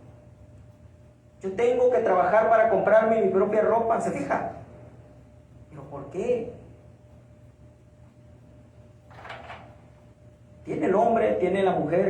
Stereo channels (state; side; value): identical; both; correlation 1.00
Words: Yo tengo que trabajar para comprarme mi propia ropa. ¿Se fija? ¿Pero por qué? Tiene el hombre, tiene la